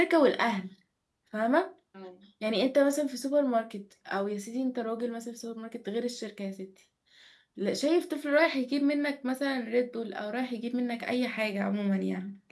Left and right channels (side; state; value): both; identical; correlation 1.00